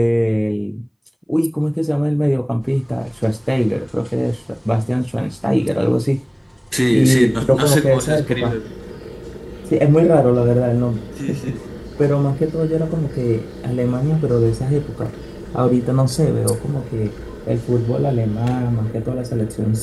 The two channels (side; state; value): both; identical; correlation 1.00